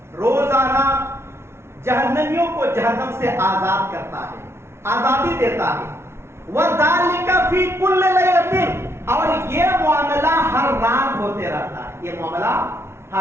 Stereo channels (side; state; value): left; late; 0.12 ms